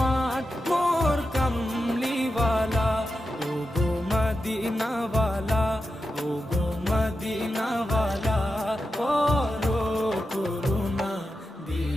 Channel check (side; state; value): both; normal; correlation 0.90